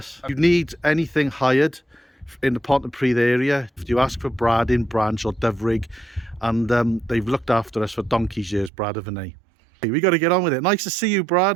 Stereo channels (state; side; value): drops out; left; at 8.7 s